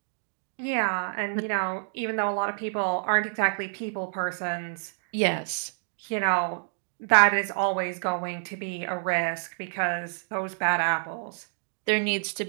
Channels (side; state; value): left; silent; digital silence